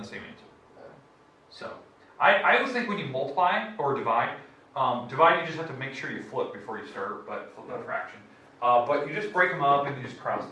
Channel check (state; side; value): identical; both; correlation 1.00